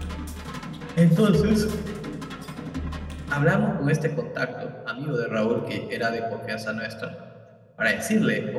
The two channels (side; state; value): both; identical; correlation 1.00